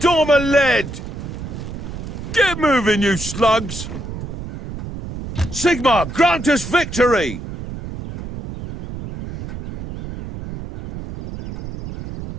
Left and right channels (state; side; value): noise; right; rumble, 9 dB below the sound